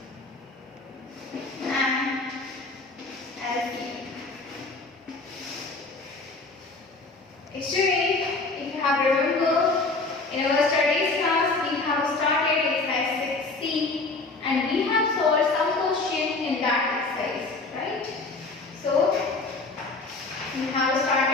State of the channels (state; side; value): quieter; right; 3.5 dB